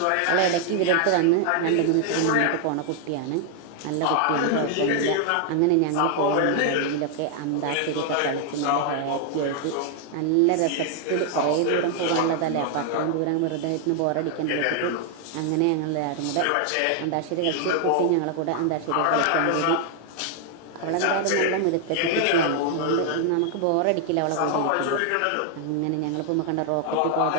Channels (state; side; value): different; both; correlation 0.00